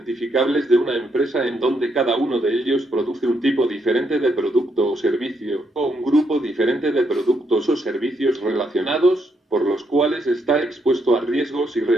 de una empresa en donde cada uno de ellos produce un tipo diferente de producto o servicio, o un grupo diferente de productos o servicios relacionados, por los cuales está expuesto a riesgos y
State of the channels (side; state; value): both; normal; correlation 0.77